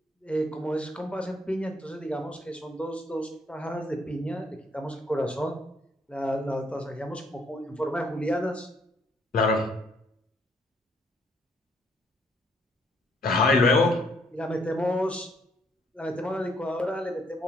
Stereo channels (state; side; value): normal; both; correlation 0.67